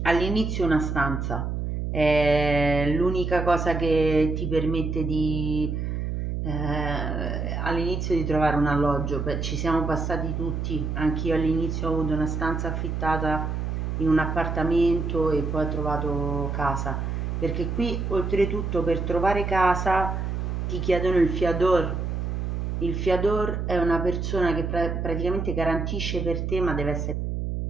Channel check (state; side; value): noise; right; hum, 2 dB below the sound